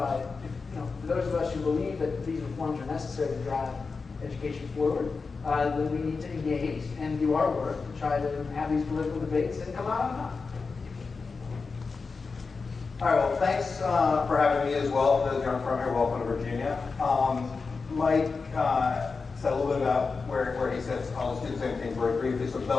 know, for those of us who believe that these reforms are necessary to drive education forward, then we need to engage and do our work to try to have these political debates and come out on top. All right, well, thanks for having me as well. For those who aren't from here, welcome to Virginia. Mike said a little bit about where he sits. I'll just do the same thing very briefly. So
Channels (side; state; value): right; quieter; 4.6 dB